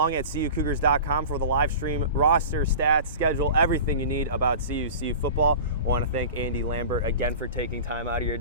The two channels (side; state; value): both; inverted; correlation -0.35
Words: at CUCougars.com for the live stream, roster, stats, schedule, everything you need about CU football. I want to thank Andy Lambert again for taking time out of your